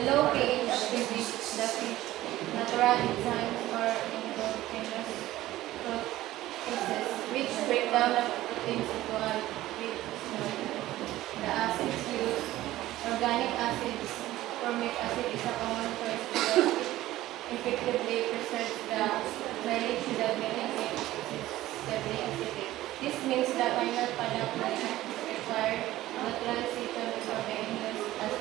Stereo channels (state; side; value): quieter; left; 15.6 dB